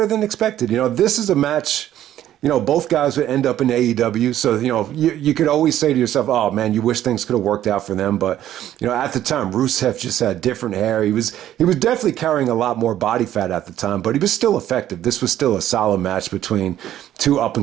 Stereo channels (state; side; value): quieter; left; 12.1 dB